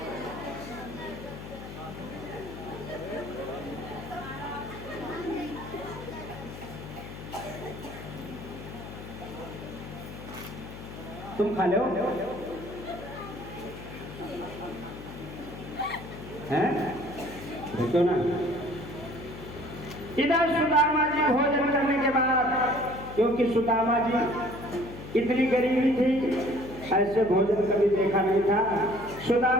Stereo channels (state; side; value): noise; left; hum, 12 dB below the sound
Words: तुम खा लो हैं, देखो ना। इधर सुदामा जी भोजन करने के बाद, क्योंकि सुदामा जी इतनी गरीबी थी, ऐसे भोजन कभी देखा नहीं था।